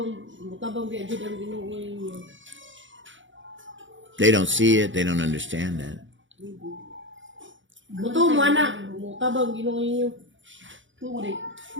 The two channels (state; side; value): late; left; 0.56 ms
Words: biadjud ang Ginoo ninyo. They don't see it. They don't understand that. Buto mo anak, mutabang Ginoo ninyo. Tumo di.